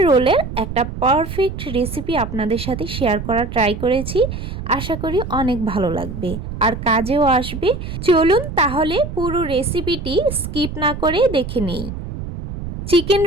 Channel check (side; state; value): right; noise; rumble, 8 dB below the sound